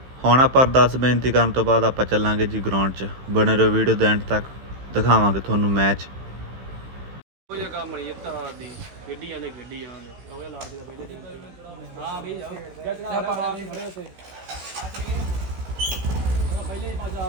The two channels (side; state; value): left; late; 15 ms